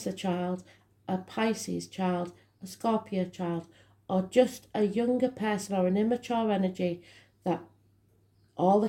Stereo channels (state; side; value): identical; both; correlation 1.00